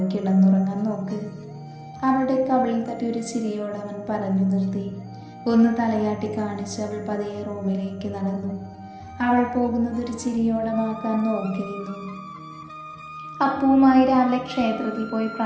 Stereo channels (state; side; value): identical; both; correlation 1.00